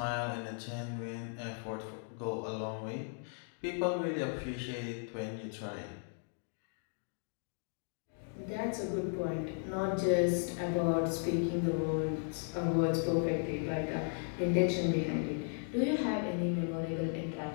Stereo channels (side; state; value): right; silent; 54 dB below the other